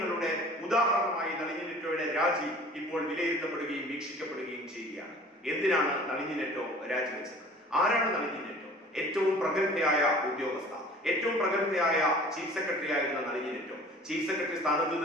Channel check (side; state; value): both; normal; correlation 0.47